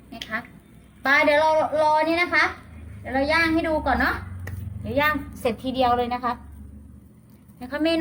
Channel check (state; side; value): identical; both; correlation 1.00